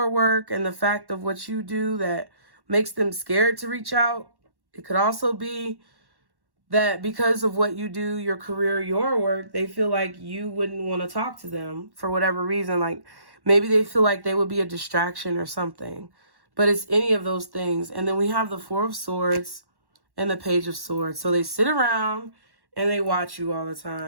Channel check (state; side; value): late; left; 1.1 ms